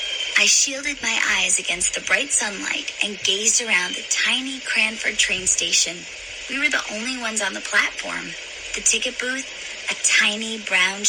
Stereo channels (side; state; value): both; identical; correlation 1.00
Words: I shielded my eyes against the bright sunlight and gazed around the tiny Cranford train station. We were the only ones on the platform. The ticket booth, a tiny brown